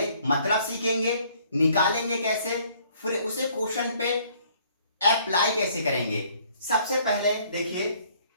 मतलब सीखेंगे, निकालेंगे कैसे, फिर उसे क्वेश्चन पे अप्लाई कैसे करेंगे। सबसे पहले देखिए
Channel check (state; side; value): inverted; both; correlation -0.61